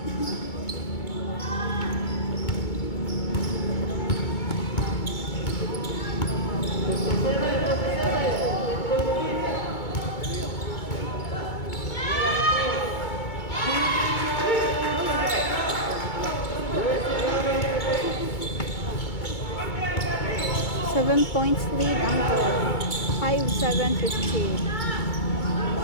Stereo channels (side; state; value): right; late; 2.2 ms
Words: Seven points lead ang goal. 5-7-15.